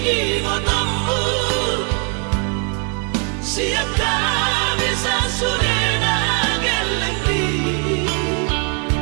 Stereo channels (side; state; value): left; quieter; 37.8 dB